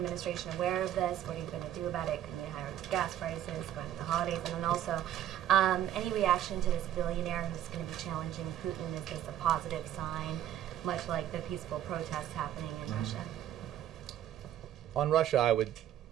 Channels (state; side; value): quieter; left; 11.4 dB